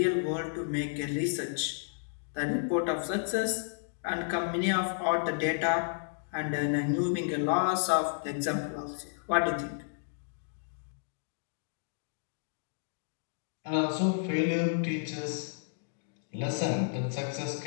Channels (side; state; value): right; silent; digital silence